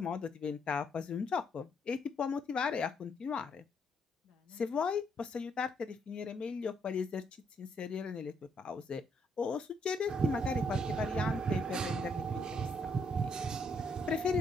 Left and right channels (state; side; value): normal; both; correlation 0.73